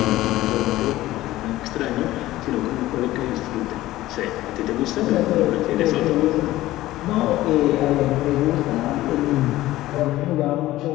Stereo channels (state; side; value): quieter; right; 16.2 dB